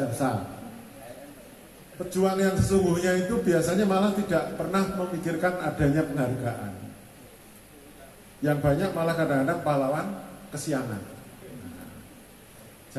Pejuang yang sesungguhnya itu biasanya malah tidak pernah memikirkan adanya penghargaan. Yang banyak malah kadang-kadang pahlawan kesiangan.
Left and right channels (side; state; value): both; identical; correlation 1.00